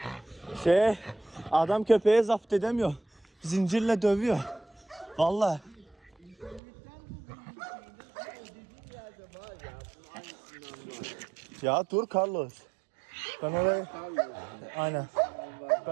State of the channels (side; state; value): left; drops out; at 6.6 s